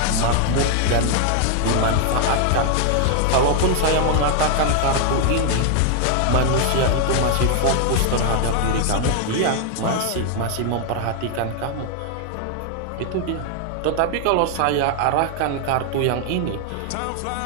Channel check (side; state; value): both; different; correlation 0.00